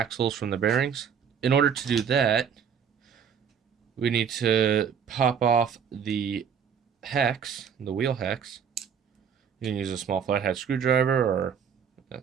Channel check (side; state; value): left; quieter; 7.4 dB